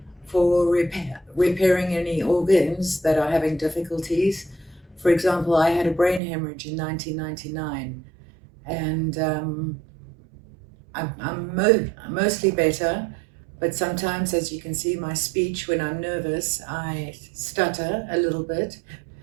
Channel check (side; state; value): left; drops out; at 6.2 s